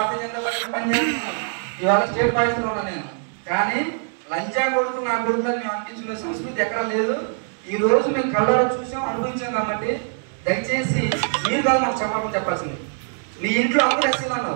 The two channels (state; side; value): silent; left; 63 dB below the other